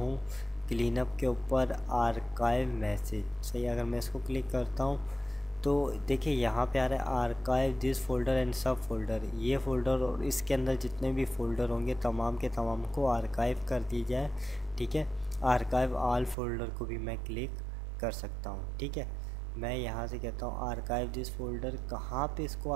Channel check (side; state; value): left; drops out; at 16.4 s